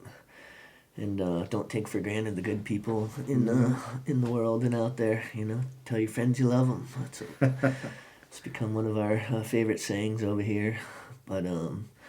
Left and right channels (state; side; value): identical; both; correlation 1.00